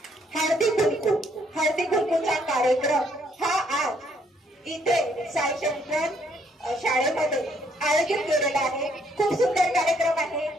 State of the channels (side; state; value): both; normal; correlation 0.69